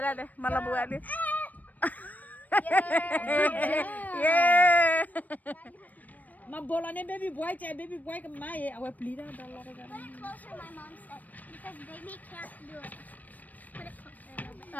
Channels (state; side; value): late; right; 0.080 ms